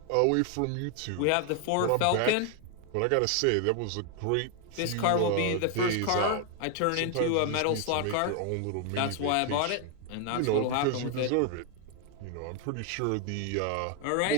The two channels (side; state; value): both; different; correlation 0.00